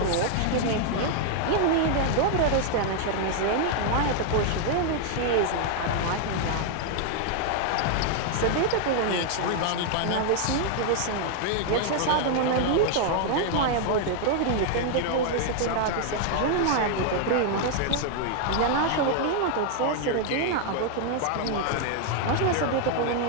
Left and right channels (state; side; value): different; both; correlation 0.00